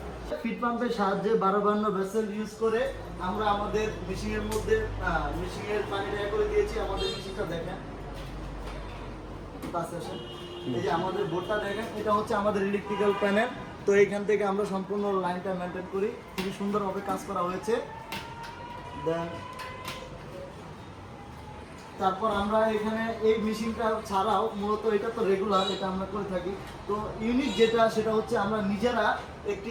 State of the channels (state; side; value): identical; both; correlation 1.00